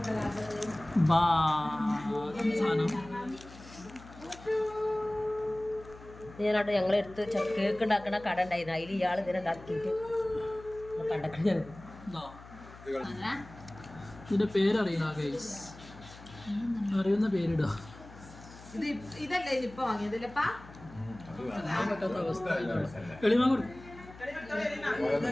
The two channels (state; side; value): noise; left; hum, 18 dB below the sound